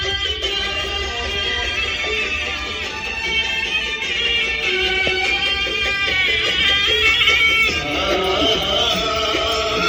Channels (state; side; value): identical; both; correlation 1.00